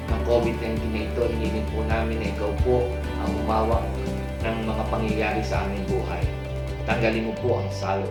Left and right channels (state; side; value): identical; both; correlation 1.00